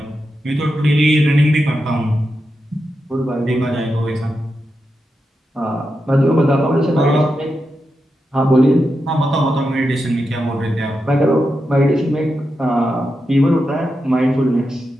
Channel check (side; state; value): both; normal; correlation 0.88